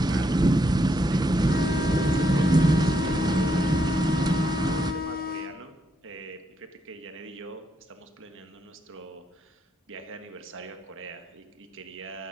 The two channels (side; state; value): both; normal; correlation 0.78